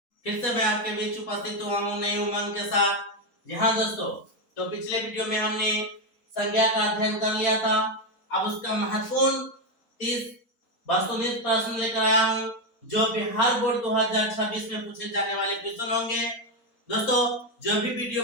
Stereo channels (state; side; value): late; right; 4.2 ms